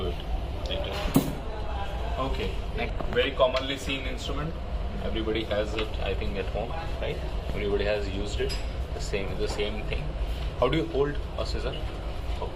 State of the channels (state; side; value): identical; both; correlation 1.00